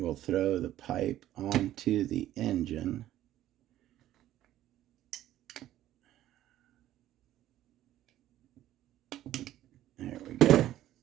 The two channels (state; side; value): quieter; left; 13.3 dB